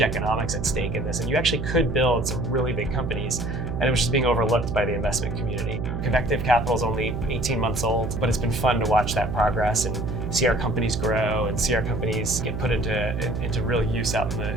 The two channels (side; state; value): right; noise; hum, 4 dB below the sound